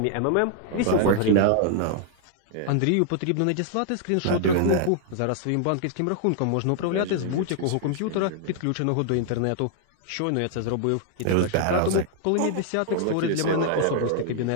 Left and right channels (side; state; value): both; different; correlation -0.01